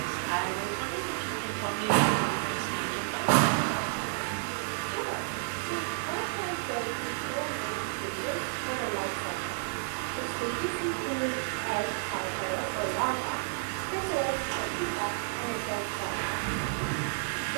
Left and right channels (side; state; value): left; silent; digital silence